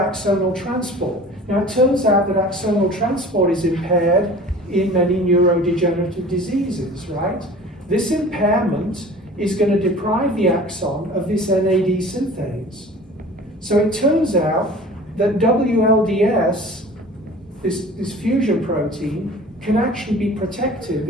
axonal transport. Now it turns out that axonal transport is impaired in many neurodegenerative diseases, right? This impairment is going to deprive the axon of this NAD synthase. So it turns out that WLDS, this fusion protein, can actually be protective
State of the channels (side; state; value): both; normal; correlation 0.43